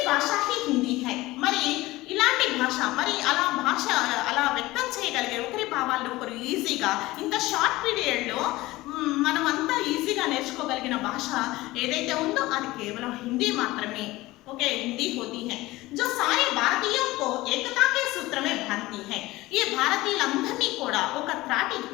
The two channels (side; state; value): right; quieter; 18.9 dB